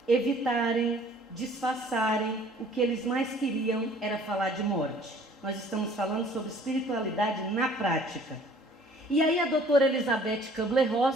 evitarem, disfarçarem, o que eles mais queriam era falar de morte. Nós estamos falando sobre espiritualidade na prática. E aí a doutora Elizabeth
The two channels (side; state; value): both; normal; correlation 0.54